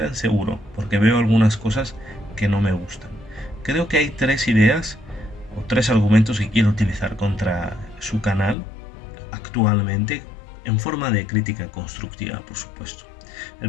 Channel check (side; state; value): right; drops out; at 8.6 s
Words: seguro, porque veo algunas cosas que no me gustan. Creo que hay tres ideas o tres argumentos que quiero utilizar contra su canal actualmente, en forma de crítica constructiva, por supuesto.